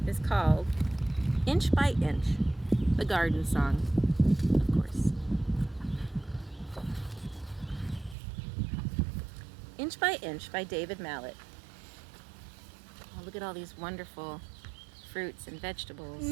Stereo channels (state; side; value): drops out; left; at 8.2 s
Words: is called Inch by Inch, the Garden Song, of course. Inch by Inch by David Mallet. Oh, look at all these wonderful fruits and vegetables.